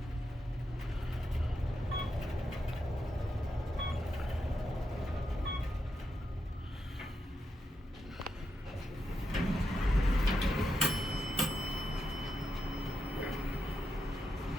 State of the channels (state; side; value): normal; both; correlation 0.84